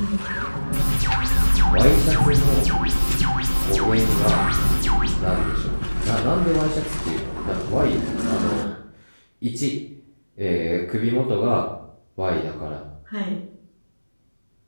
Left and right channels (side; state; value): both; inverted; correlation -1.00